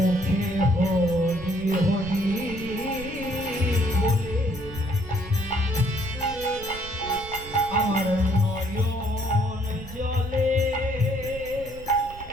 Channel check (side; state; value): right; noise; rumble, 15 dB below the sound